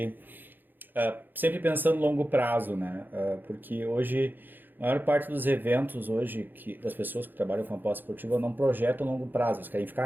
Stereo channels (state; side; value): late; left; 0.091 ms